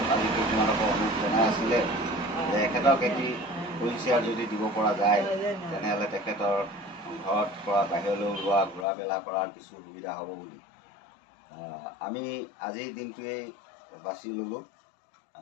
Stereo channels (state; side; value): drops out; right; at 8.8 s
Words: আজি কেইদিনমানকৈ অনুৰোধ জনাই আছিলে যে এখেতক এটি হুইল চেয়াৰ যদি দিব পৰা যায় তেনেহ'লে তেখেতৰ ঘৰত পৰা বাহিৰলৈ ওলোৱা ঘূৰা মেলা কৰাৰ কিছু সুবিধা হ'ব বুলি আমি আজিৰ দিনটোৱেই বাছি ল'লোঁ।